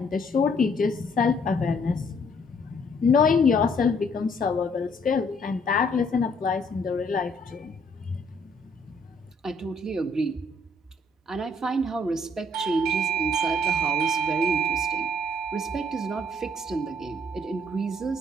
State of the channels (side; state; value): both; normal; correlation 0.65